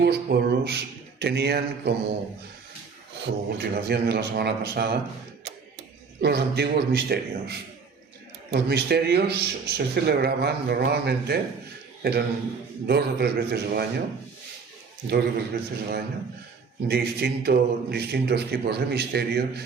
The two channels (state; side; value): quieter; left; 5.3 dB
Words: pueblos tenían como continuación de la semana pasada, los antiguos misterios. Los misterios se celebraban normalmente, eran 2 o 3 veces al año, distintos tipos de misterios,